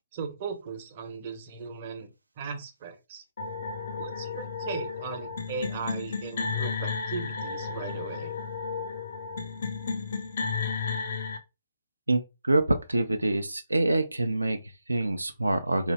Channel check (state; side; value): inverted; both; correlation -0.79